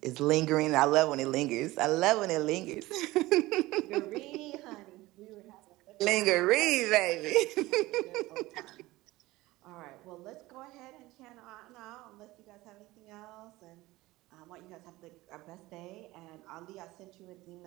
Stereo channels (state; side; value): quieter; left; 18.9 dB